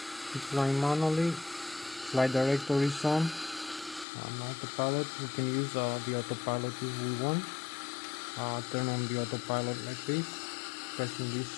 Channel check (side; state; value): right; drops out; at 4.0 s